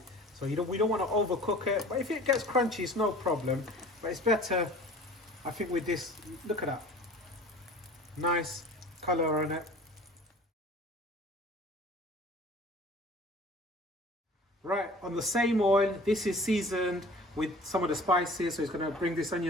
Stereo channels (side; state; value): both; normal; correlation 0.45